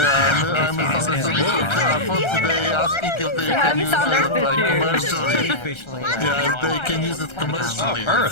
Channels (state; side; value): late; right; 1.3 ms